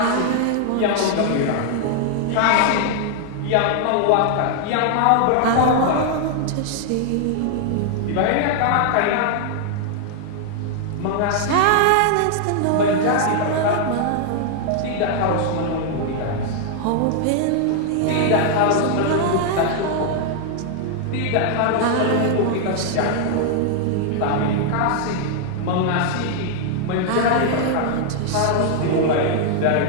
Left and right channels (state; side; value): different; both; correlation 0.00